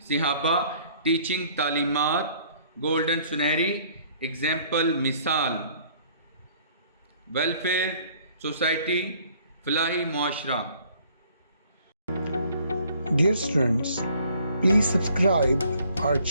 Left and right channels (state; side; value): inverted; both; correlation -0.59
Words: सहाबा टीचिंग तालीमात, गोल्डन सुनहरी एग्जाम्पल मिसाल, वेलफेयर सोसाइटी फलाही माशरा। Dear students, please subscribe our